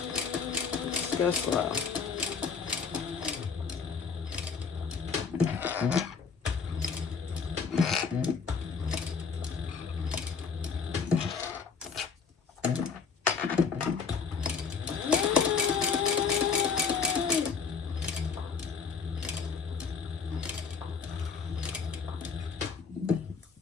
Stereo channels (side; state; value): right; quieter; 5.7 dB